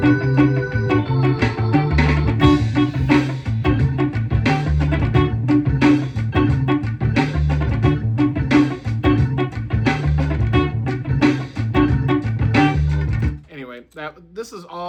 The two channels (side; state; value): both; identical; correlation 1.00